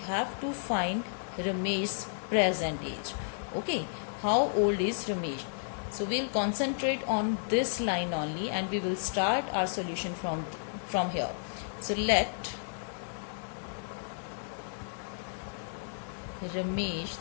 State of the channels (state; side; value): silent; right; 56 dB below the other